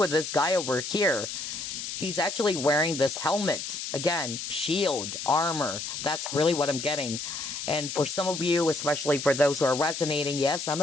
this guy over here, he's actually wearing this helmet. Again, shield, armor. That's really what I'm getting. And for some of you, especially for those who are resonating, yes,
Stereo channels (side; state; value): left; noise; hiss, 6 dB below the sound